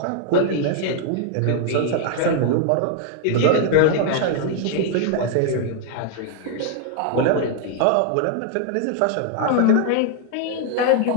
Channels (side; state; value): both; different; correlation 0.00